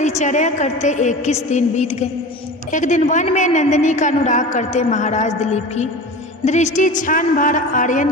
करते 21 दिन बीत गए। एक दिन वन में नंदिनी का अनुराग करते महाराज दिलीप की दृष्टि क्षण भर आर्यन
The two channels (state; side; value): normal; both; correlation 0.33